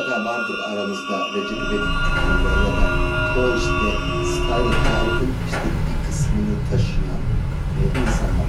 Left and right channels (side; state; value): both; identical; correlation 1.00